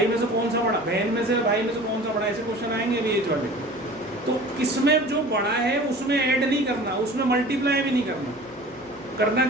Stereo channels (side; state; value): right; noise; hum, 29 dB below the sound